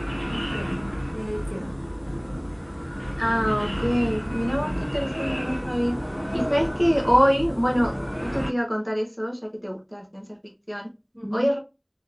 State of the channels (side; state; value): both; identical; correlation 1.00